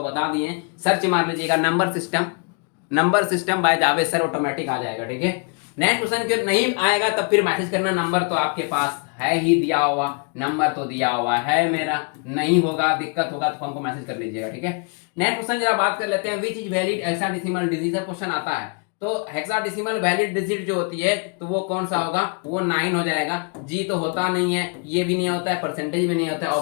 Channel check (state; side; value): quieter; right; 37.2 dB